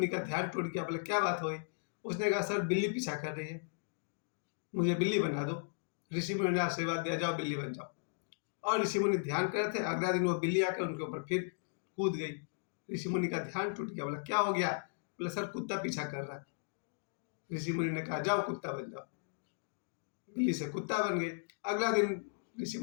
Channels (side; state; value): right; silent; digital silence